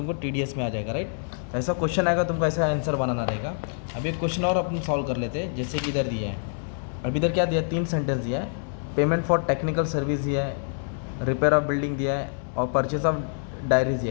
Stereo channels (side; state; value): right; silent; 61 dB below the other